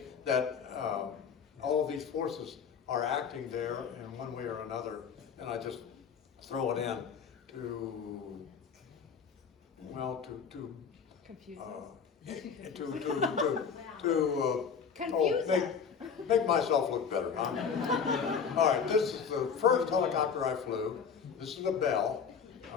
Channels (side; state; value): right; quieter; 6.5 dB